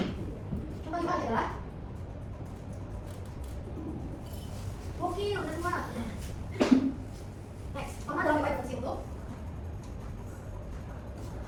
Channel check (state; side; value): identical; both; correlation 1.00